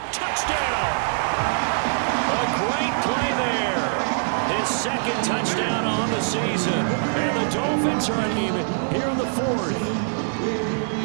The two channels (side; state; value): left; silent; 57 dB below the other